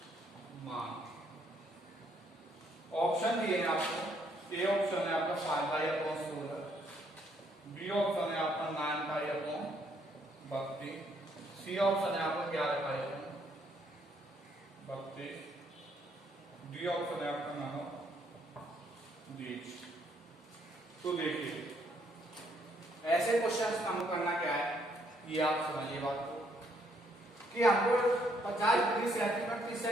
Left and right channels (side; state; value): both; normal; correlation 0.70